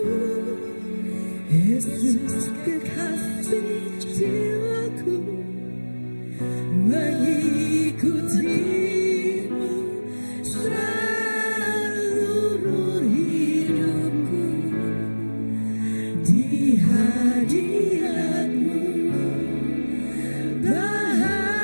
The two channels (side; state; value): both; inverted; correlation -1.00